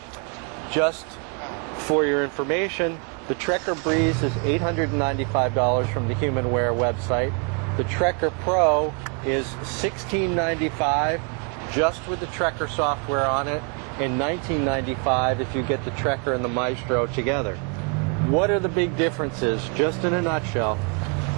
Just for your information, the Trekker Breeze is $895 from the Humanware website. The Trekker Pro is $1695 just with the Trekker software on it, and $1995 if you get the Trekker and the Maestro together. What are the big differences? Just in a nutshell,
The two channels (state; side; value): quieter; left; 36.7 dB